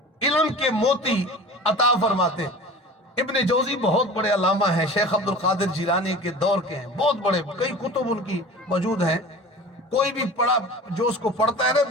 علم کے موتی عطا فرماتے۔ ابن جوزی بہت بڑے علامہ ہیں، شیخ عبدالقادر جیلانی کے دور کے ہیں، بہت بڑے، کئی کتب ان کی موجود ہیں۔ کوئی بھی پڑھا جو اس کو پڑھتا ہے نا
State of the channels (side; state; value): both; normal; correlation 0.38